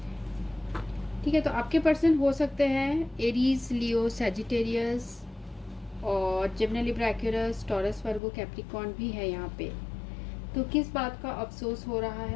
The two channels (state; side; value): drops out; right; at 8.2 s